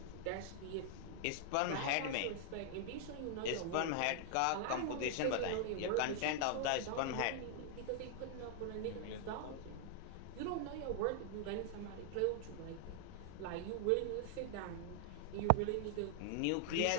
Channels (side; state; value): both; different; correlation 0.00